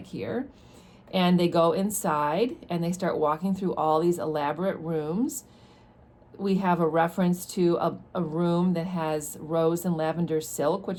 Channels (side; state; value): both; identical; correlation 1.00